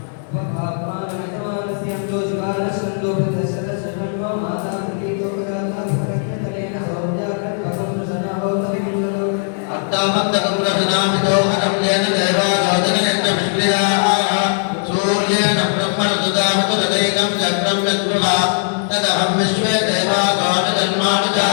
अट्टामन्तकं रचनामिदोहनं येन देवादोदनयन्त विष्णुयाः सूर्येण ब्रह्मणदुदामतुरदैकं चक्रं यत्पुरा तदहं विश्वे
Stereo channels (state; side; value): silent; right; digital silence